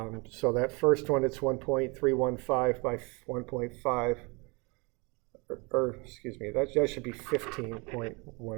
that first one, it's 1.315 by 1.5, or excuse me, that should be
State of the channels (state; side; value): quieter; left; 29.0 dB